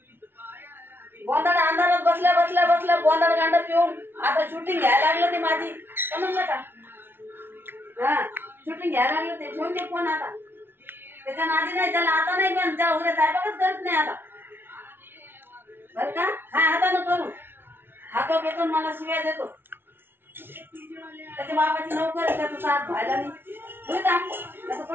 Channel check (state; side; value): late; left; 0.11 ms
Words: गोंधळ अंधारात बसल्या बसल्या बसल्या गोंधळ गांड पिऊन आता शूटिंग घ्यायला लागलं ते माझी समजलं का. हा शूटिंग घ्यायला लागलं ते ठेवून ते फोन आता त्याच्या नादी नाही त्याला आता नाही पण त्या उद्या साहेबाकच करत नाही आता बरं का. काय हातानं करू हातो बेतून मला शिव्या देतो. त्याच्या बापाची नोकर त्याचा साथ व्हायला नाही